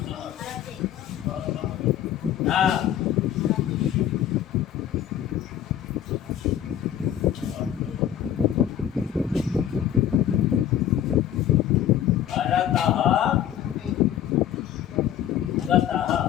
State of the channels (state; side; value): quieter; right; 10.6 dB